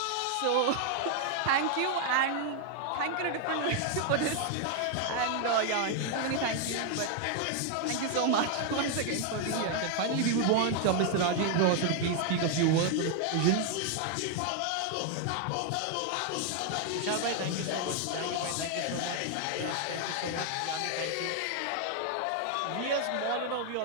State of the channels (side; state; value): both; different; correlation 0.00